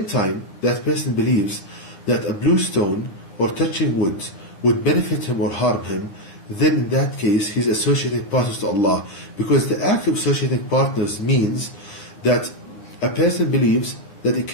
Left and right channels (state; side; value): late; right; 10 ms